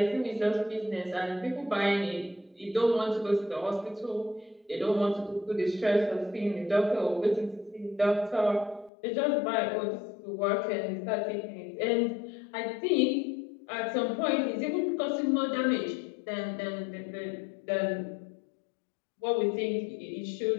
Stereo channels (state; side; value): drops out; right; at 8.9 s